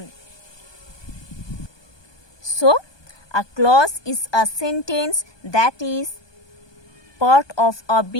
So, a clause is a sentence that is part of a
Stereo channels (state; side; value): late; right; 1.2 ms